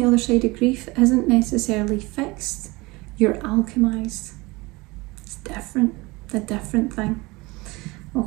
other side of grief isn't necessarily fixed, you're alchemized. It's different, a different thing,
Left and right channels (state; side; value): quieter; left; 23.3 dB